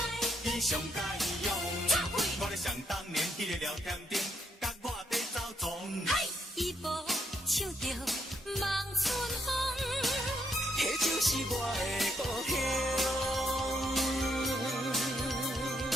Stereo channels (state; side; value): normal; both; correlation 0.75